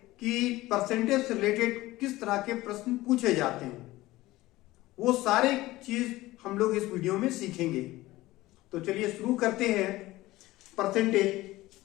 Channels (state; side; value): quieter; right; 18.0 dB